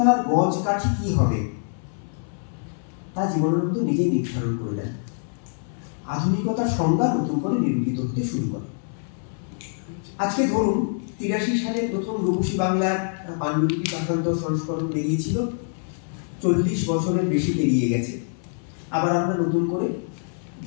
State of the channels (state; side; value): silent; right; 58 dB below the other